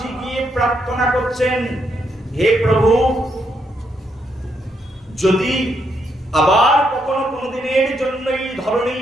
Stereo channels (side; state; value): both; normal; correlation 0.77